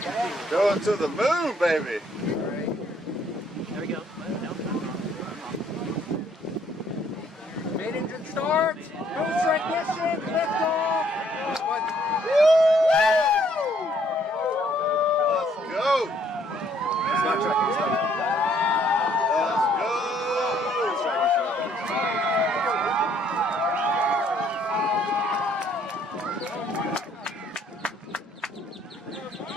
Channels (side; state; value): both; normal; correlation 0.65